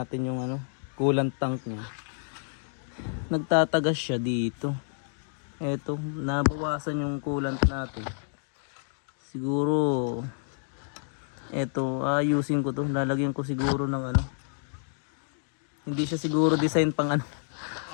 natin yung coolant tank niya. Nagtatagas siya dito. Eto, nabawasan yung coolant natin. Siguro eto, ayusin ko to. Lalagyan ko siguro ng hindi siya siguro design pang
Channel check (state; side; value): silent; right; digital silence